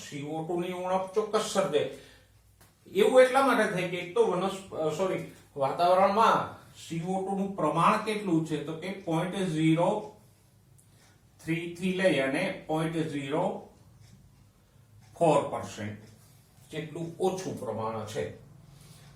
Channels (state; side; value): identical; both; correlation 1.00